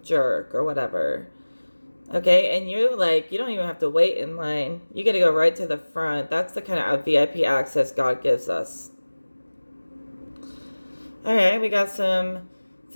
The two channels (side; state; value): both; inverted; correlation -1.00